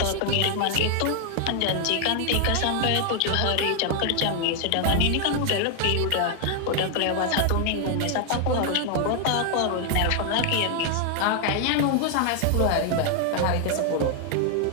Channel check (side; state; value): both; different; correlation 0.00